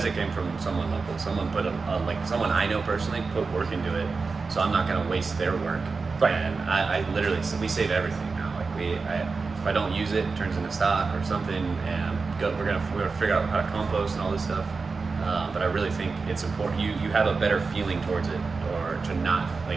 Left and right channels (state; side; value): quieter; left; 4.4 dB